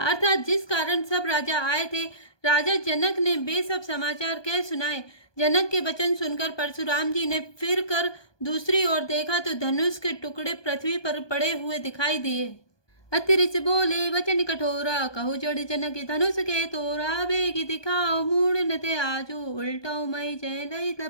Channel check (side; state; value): right; late; 1.2 ms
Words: जिस कारण सब राजा आए थे राजा जनक ने वे सब समाचार कह सुनाए। जनक के वचन सुनकर परशुराम जी ने फिर कर दूसरी ओर देखा तो धनुष के टुकड़े पृथ्वी पर पड़े हुए दिखाई दिए। अतिरिच बोले वचन कठोरा कहु जड़ जनक धनुष के तोरा बेगी दिखाओ मूड नते आजो उल्टाओ मई जय लई